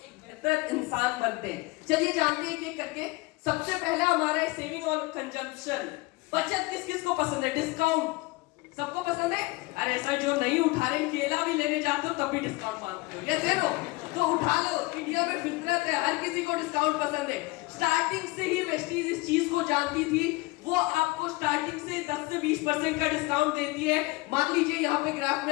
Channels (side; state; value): right; quieter; 23.0 dB